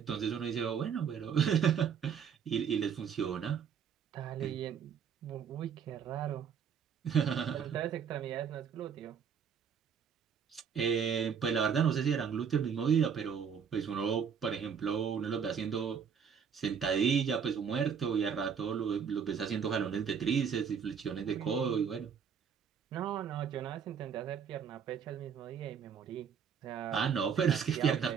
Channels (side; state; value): left; quieter; 7.2 dB